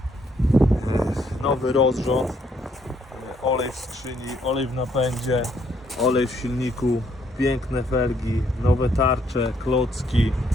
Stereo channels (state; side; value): normal; both; correlation 0.70